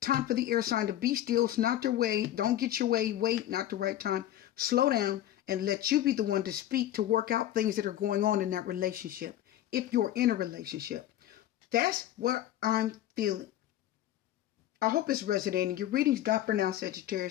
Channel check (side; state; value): right; quieter; 12.7 dB